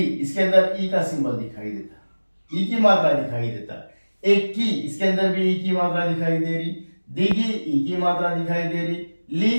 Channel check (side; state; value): both; inverted; correlation -1.00